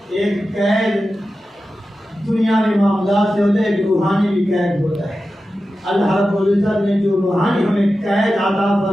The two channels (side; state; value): both; normal; correlation 0.93